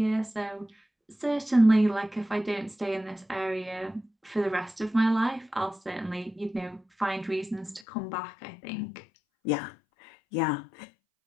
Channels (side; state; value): right; drops out; at 7.9 s